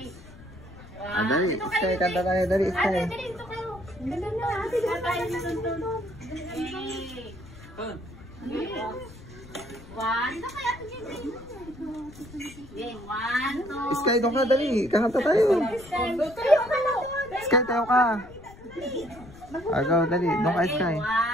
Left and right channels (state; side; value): noise; left; rumble, 19 dB below the sound